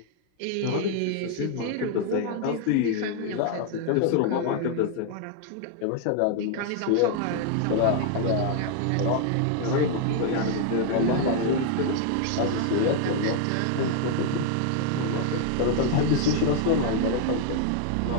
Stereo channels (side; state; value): both; different; correlation 0.00